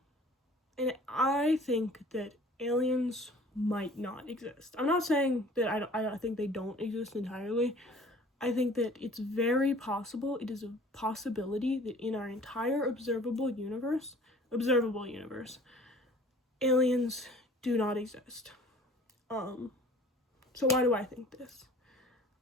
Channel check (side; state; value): both; normal; correlation 0.49